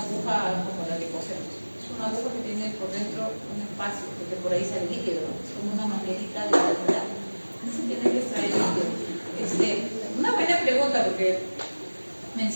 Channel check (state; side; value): inverted; both; correlation -1.00